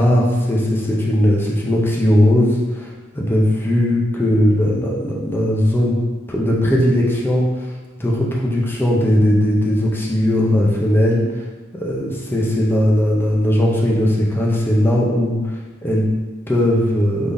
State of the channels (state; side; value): normal; both; correlation 0.85